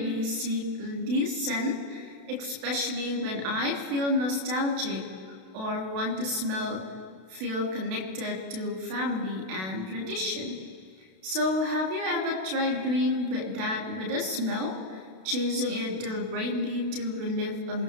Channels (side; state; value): left; late; 32 ms